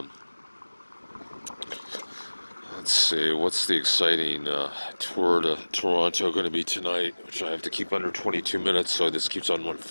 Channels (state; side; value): inverted; both; correlation -1.00